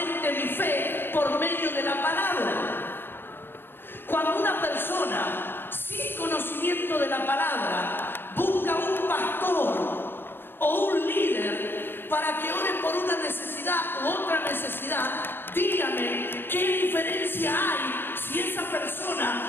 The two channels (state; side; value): late; right; 0.10 ms